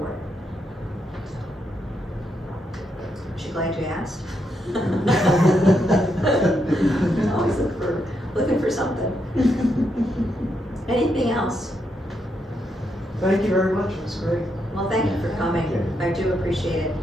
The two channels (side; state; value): both; normal; correlation 0.80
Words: it. She glad you asked? Always looking for something. Anything else? Thank you very much, it was great. Well, thank you for coming. I do appreciate it.